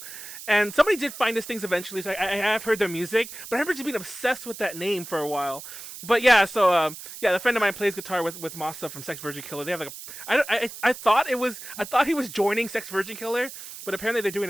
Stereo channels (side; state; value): right; noise; hiss, 12 dB below the sound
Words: And somebody did find us things eventually, so I have heard their music, but I remember just being obsessed with that name for a while. But yeah, so the friend of mine plays guitar with Masa from Sex Virgin Killer. They have like I thought he was joining Sex Virgin Killer, but apparently they're